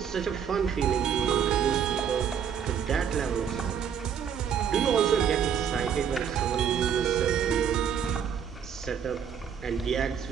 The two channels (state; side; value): quieter; left; 7.9 dB